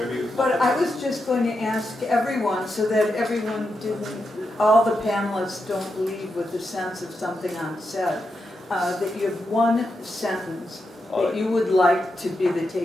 but I was just going to ask everyone so that everyone all the panelists don't leave with the sense of something unsaid, that you have one sentence that you would like to be the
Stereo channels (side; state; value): both; normal; correlation 0.86